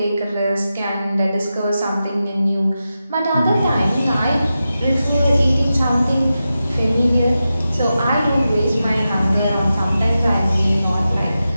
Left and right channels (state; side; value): inverted; both; correlation -0.91